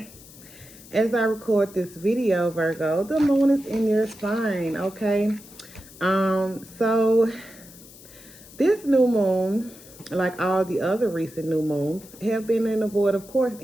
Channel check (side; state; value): left; noise; hiss, 20 dB below the sound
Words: as I record this video, Virgo, the moon is in your sign, okay? So this new moon, like all the other recent new moons, have been in a void of course